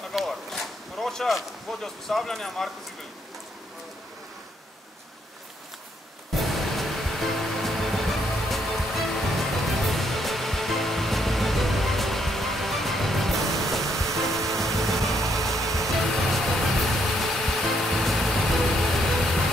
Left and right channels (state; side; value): normal; both; correlation 0.73